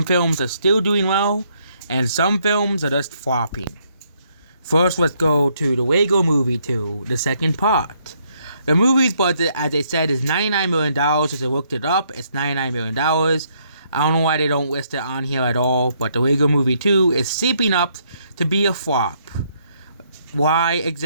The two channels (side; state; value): both; inverted; correlation -0.71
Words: films are still doing well, and some films are just flopping. First, let's go to the Lego Movie 2, the second part. The movie's budget, as they said, is $99 million. As I looked it up, it's $99 million. I don't know why they don't list it on here at all, but the Lego Movie 2 is shaping up to be a flop. Why